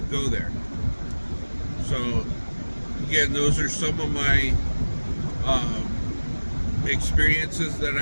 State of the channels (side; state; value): both; inverted; correlation -1.00